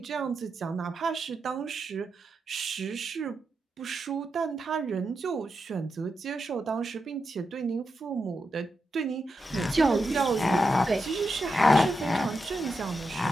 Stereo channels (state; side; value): normal; both; correlation 0.87